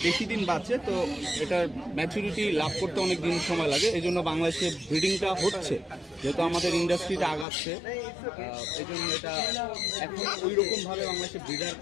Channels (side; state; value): right; drops out; at 7.5 s